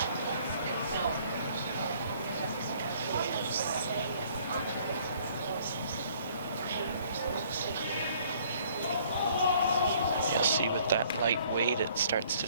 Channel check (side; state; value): both; inverted; correlation -0.59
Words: You'll see with that light weight, it starts